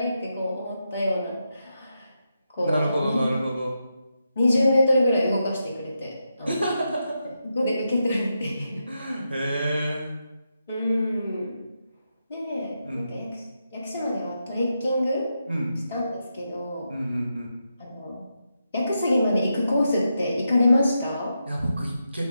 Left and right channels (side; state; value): both; inverted; correlation -0.86